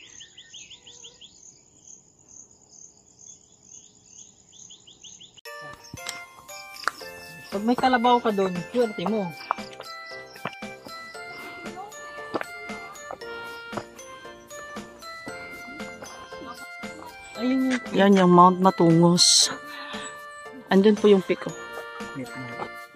Pag may kalabaw ka doon, swerte mo. Ayun. Yan yung Mount Matungos. Andun po yung peak. Oh.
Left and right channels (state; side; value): identical; both; correlation 1.00